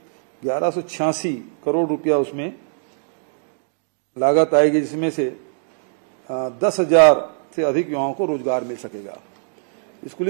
1186 करोड़ रुपया उसमें लागत आएगी, जिसमें से 10,000 से अधिक युवाओं को रोजगार मिल सकेगा।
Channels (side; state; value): left; silent; digital silence